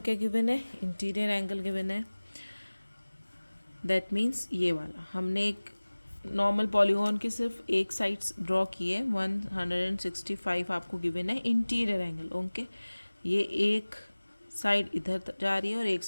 गिवन है? इंटीरियर एंगल गिवन है। दैट मीन्स ये वाला हमने एक नॉर्मल पॉलीगॉन की सिर्फ एक साइड्स ड्रॉ की है, 165 आपको गिवन है इंटीरियर एंगल। ओके, ये एक साइड इधर जा रही है और एक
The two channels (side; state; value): both; inverted; correlation -1.00